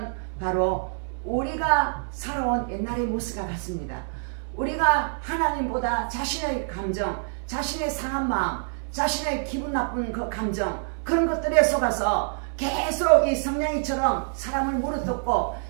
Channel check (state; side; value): silent; left; 61 dB below the other